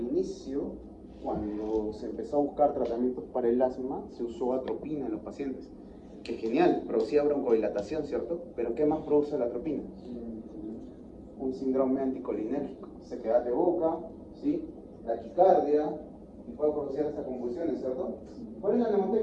inicio, cuando se empezó a buscar tratamientos para el asma, se usó atropina en los pacientes. Que genial, producía broncodilatación, ¿cierto? Pero ¿qué más produce la atropina? Un síndrome anticolinérgico, sequedad de boca, ¿sí? Taquicardia, y puede producir hasta convulsiones, ¿cierto? ¿Cuál es la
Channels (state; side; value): identical; both; correlation 1.00